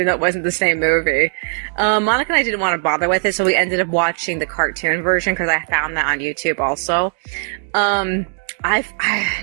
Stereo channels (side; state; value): left; silent; 60 dB below the other